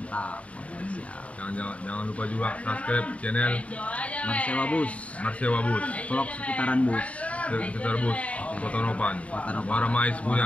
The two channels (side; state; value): right; late; 0.065 ms